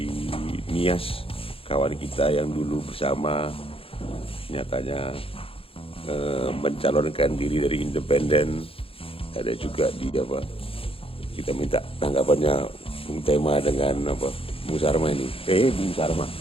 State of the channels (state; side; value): late; right; 0.27 ms